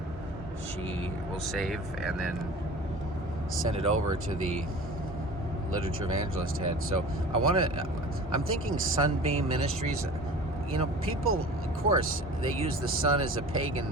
she will save and then send it over to the literature evangelist head. So I'm thinking Sunbeam Ministries. People, of course, they use the sun as a pagan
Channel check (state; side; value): normal; both; correlation 0.40